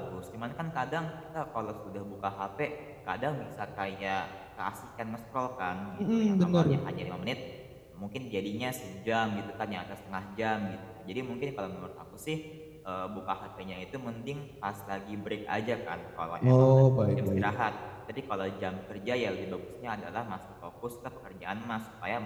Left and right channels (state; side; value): identical; both; correlation 1.00